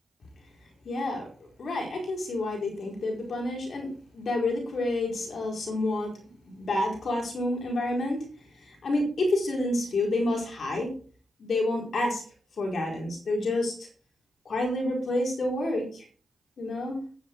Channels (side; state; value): both; normal; correlation 0.84